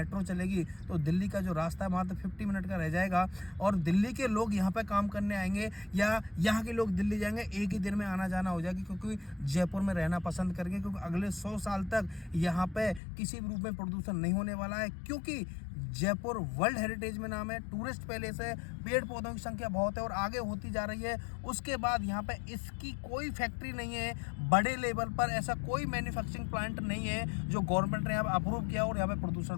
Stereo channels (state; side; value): drops out; right; at 13.0 s